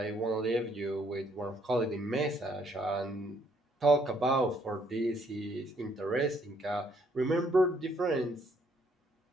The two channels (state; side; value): normal; both; correlation 0.68